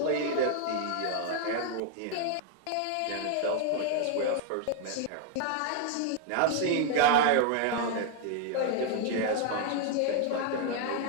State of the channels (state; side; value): different; both; correlation 0.00